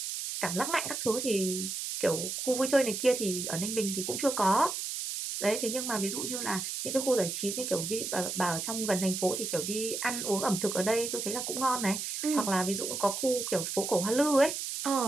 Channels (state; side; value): noise; right; hiss, 4 dB below the sound